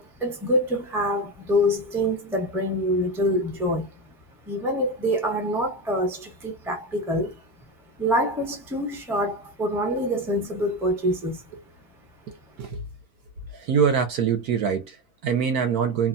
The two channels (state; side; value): normal; both; correlation 0.17